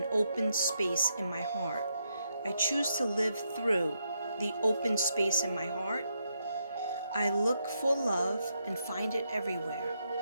open space in my heart. I choose to live through the open space in my heart. I look for love and find it everywhere.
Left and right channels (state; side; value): inverted; both; correlation -0.80